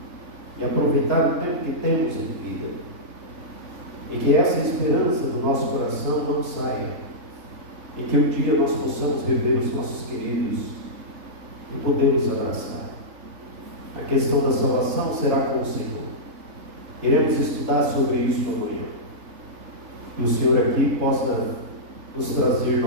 e aproveitar o tempo que temos em vida, e que essa esperança do nosso coração não saia, em que um dia nós possamos rever os nossos queridos e podemos abraçar. A questão da salvação será com o Senhor. Iremos estudar sobre isso amanhã. Que o Senhor aqui possa nos trazer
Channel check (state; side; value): late; left; 4.0 ms